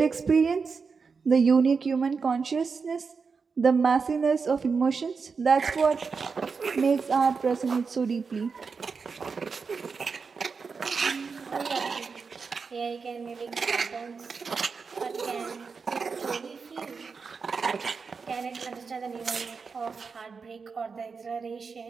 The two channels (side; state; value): left; quieter; 5.2 dB